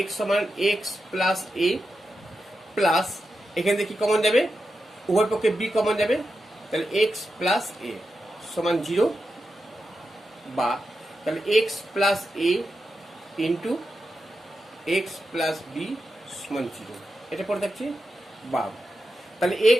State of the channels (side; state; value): both; normal; correlation 0.89